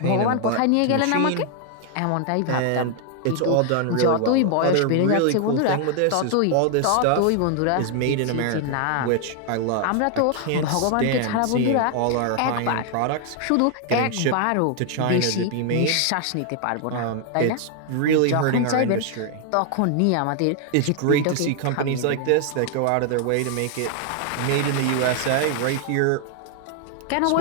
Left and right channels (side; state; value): both; different; correlation 0.00